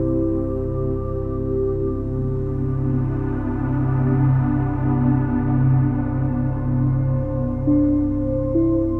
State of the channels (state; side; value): identical; both; correlation 1.00